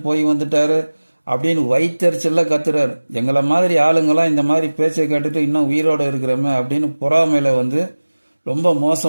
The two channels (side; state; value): both; inverted; correlation -1.00